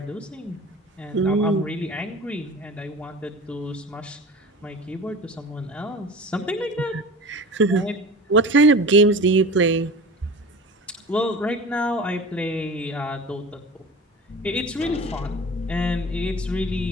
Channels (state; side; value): normal; both; correlation 0.36